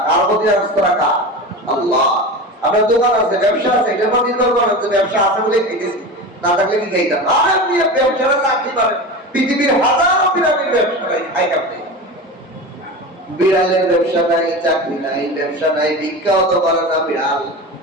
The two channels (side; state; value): both; normal; correlation 0.28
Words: কার প্রতি আস্থা রাখা? আল্লাহ। আপনার দোকান আছে, ব্যবসা আছে, এটার প্রতি নির্ভর করেন যে ব্যবসা আছে বলে খেতেছি, না থাকলে কি খাইতাম? আর আপনি ব্যবসাটা চাকরি পারেন, পৃথিবীর হাজারো পিরামিড ব্যবসা নাই, খাই কাটতে। বিড়ালের ব্যবসা নাই, চাকরি নাই, ব্যবসা নাই, ভিক্ষাও তো পারে না বিড়াল।